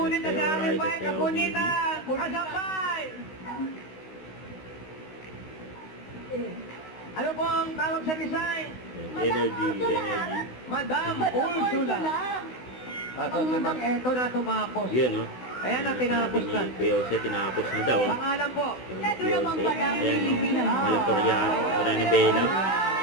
na namin ba yung kapunitan? Kasampay! Ano po ang tawag sa design? Energy. Madam Ursula. Ito na tumapos. Yan, no? Ayan na, tinapos na. Ni Kuya Jose, tinapos na daw. Pangalan po. Ito naman pala. Ayan, Malatoriano. Wala na Bela.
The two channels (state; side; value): late; right; 16 ms